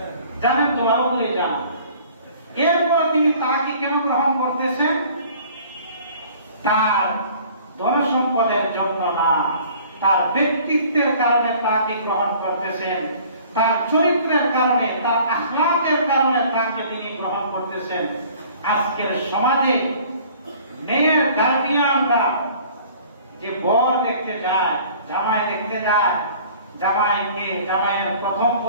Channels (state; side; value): inverted; both; correlation -0.51